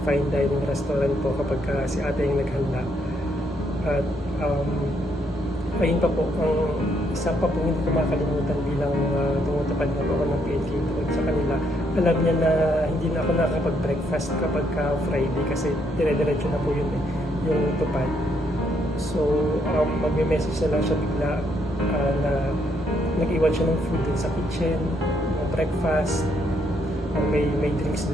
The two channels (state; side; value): normal; both; correlation 0.73